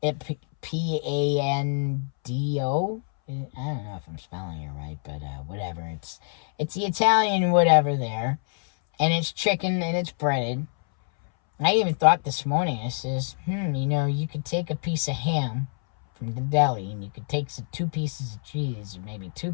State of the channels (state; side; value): silent; right; 61 dB below the other